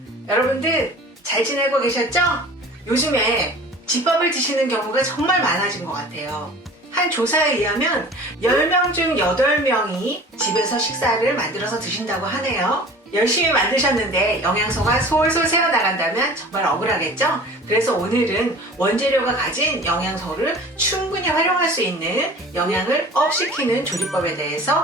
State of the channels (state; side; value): normal; both; correlation 0.42